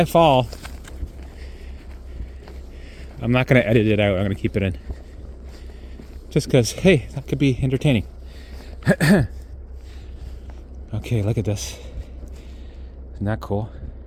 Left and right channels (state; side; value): identical; both; correlation 1.00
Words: fall, I'm not going to edit it out. I'm going to keep it in. Just because, hey, that could be entertaining. Okay, look at this. Isn't that cool?